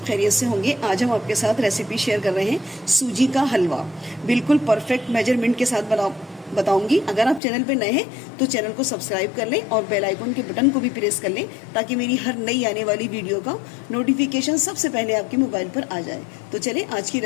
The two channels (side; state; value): right; drops out; at 7.4 s